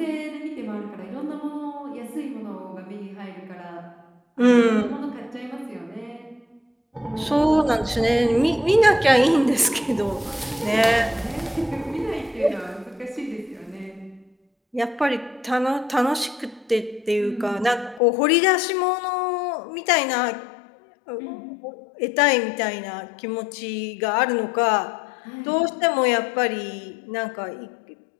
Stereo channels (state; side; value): drops out; right; at 18.0 s